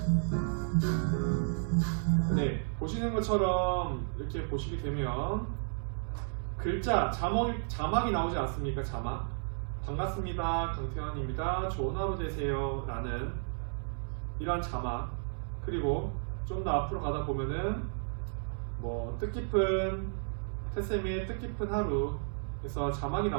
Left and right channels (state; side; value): silent; left; 56 dB below the other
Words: 네, 보시는 것처럼 이렇게 보시게 되면 글자, 자막이 나오지 않습니까? 자막. 반갑습니다. 강태환입니다. 좋은 하루 되세요. 라는 이러한 자막. 그리고 좀 더 앞으로 가다 보면은 뭐 뜻깊은 태쌤의 뜻깊은 하루 에서 자막이